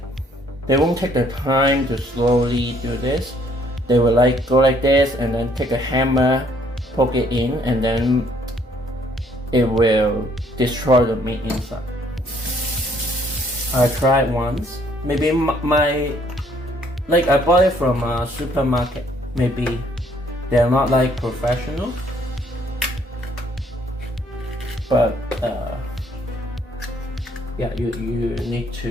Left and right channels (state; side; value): normal; both; correlation 0.64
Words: take the time to slowly do this. They will like go like this and then take a hammer, poke it in, and then it will destroy the meat inside. I tried once. Maybe I bought it from a supermarket. Maybe they're not like professional, but yeah, you need